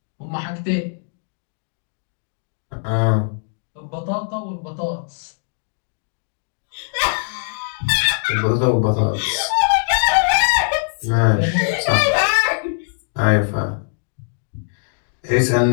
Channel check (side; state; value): right; silent; digital silence